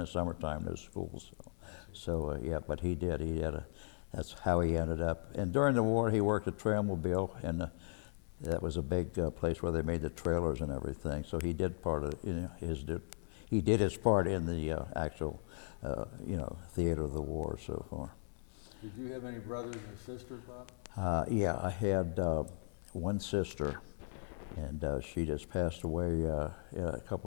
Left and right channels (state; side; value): silent; right; 53 dB below the other